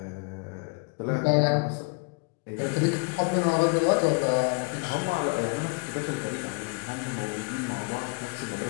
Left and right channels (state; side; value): quieter; right; 32.8 dB